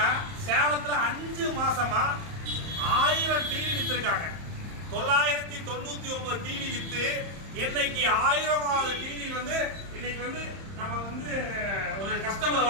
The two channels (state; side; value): late; left; 31 ms